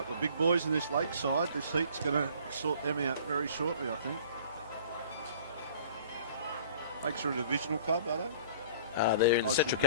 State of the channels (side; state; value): both; inverted; correlation -0.48